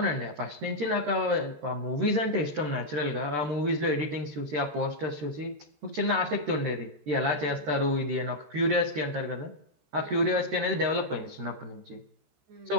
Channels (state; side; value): late; left; 14 ms